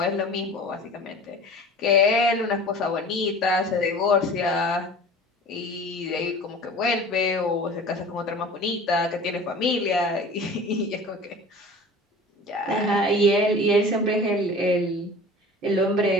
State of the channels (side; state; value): both; normal; correlation 0.41